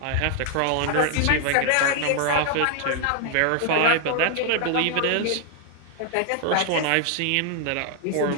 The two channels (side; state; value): both; different; correlation 0.00